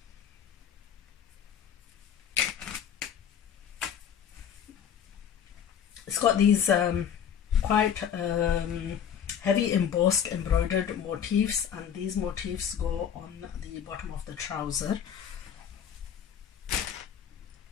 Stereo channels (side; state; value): right; quieter; 8.5 dB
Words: these quite heavy embossed embroidered motifs, and these motifs go on the bottom of the trouser.